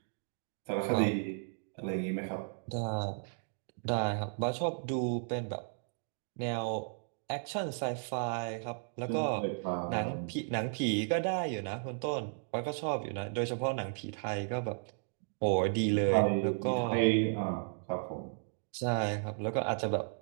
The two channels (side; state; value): left; silent; digital silence